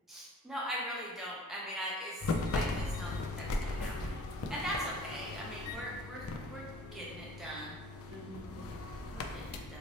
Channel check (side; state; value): both; normal; correlation 0.48